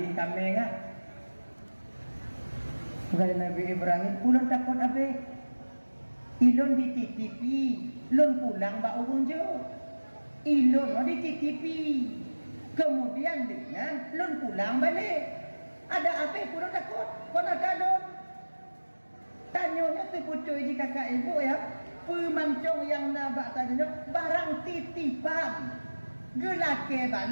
kami ngah. Kata Nabi Ibrahim, ulun takut abih. Ilon dititipi, lon pulang bak urun je. Ilon dititipi. Kemudian dengan lon pulang balik. Ada apa pun takut? Kau nak lon? Tanyanya tu pucuk di kakak ibu ya. Pemancong yang nabak tanya barang titipan. Gelake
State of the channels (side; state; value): both; inverted; correlation -1.00